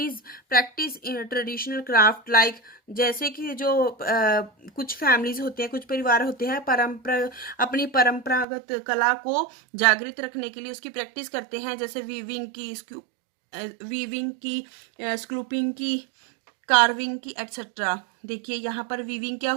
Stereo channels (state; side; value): drops out; left; at 8.5 s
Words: practice traditional craft like, जैसे कि जो कुछ फैमिलीज होते हैं, कुछ परिवार होते हैं अपनी परंपरागत कला को जागृत रखने के लिए उसकी प्रैक्टिस करते हैं, जैसे वीविंग की, स्कूपिंग की, कार्विंग की, एटसेट्रा। देखिए यहाँ पर वीविंग क्या